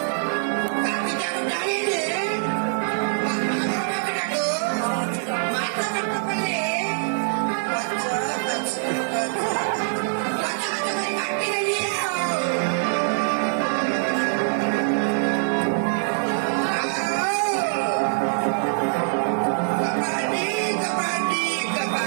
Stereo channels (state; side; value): silent; left; digital silence